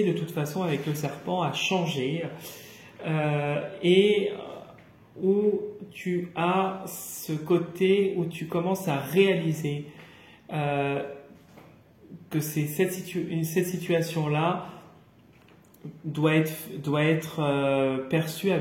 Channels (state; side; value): identical; both; correlation 1.00